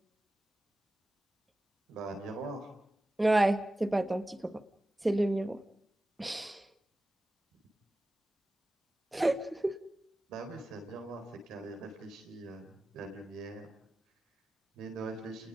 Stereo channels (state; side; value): normal; both; correlation 0.94